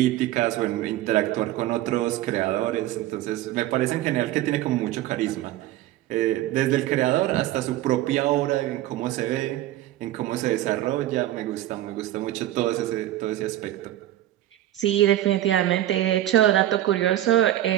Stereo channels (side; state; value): left; quieter; 14.0 dB